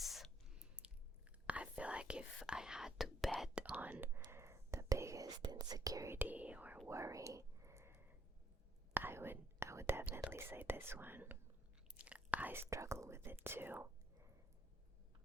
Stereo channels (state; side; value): normal; both; correlation 0.70